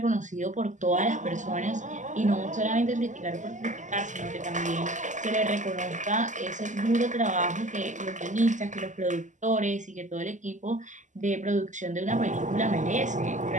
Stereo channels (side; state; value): left; late; 0.36 ms